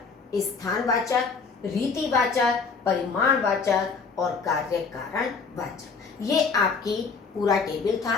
स्थानवाचक, रीतिवाचक, परिमाणवाचक और कार्य कारण वाचक। ये आपकी पूरा टेबल था,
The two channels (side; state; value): right; quieter; 4.9 dB